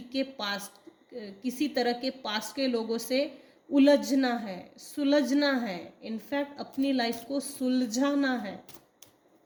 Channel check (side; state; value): both; identical; correlation 1.00